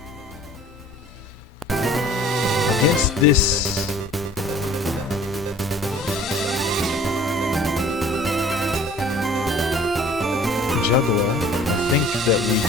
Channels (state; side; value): normal; both; correlation 0.50